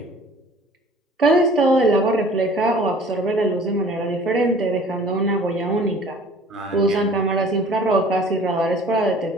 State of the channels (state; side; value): normal; both; correlation 0.50